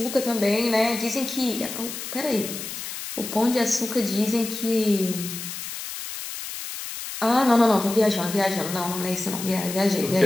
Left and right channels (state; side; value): noise; left; hiss, 8 dB below the sound